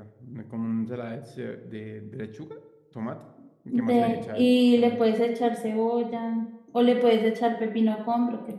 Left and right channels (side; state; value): both; identical; correlation 1.00